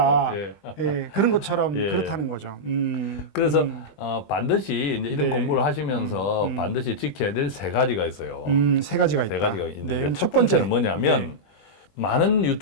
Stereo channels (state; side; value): late; right; 20 ms